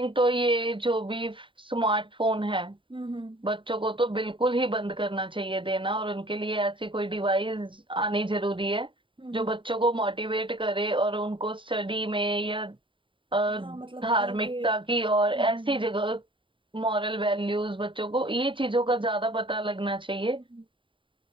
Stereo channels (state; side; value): late; left; 0.25 ms